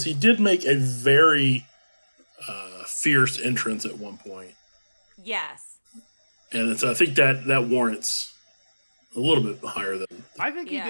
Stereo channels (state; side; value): inverted; both; correlation -1.00